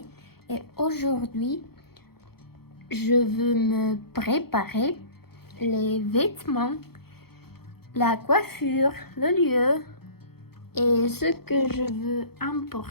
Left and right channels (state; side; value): late; right; 0.96 ms